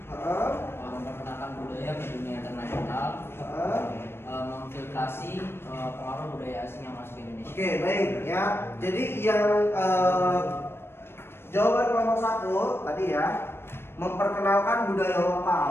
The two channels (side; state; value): right; late; 0.12 ms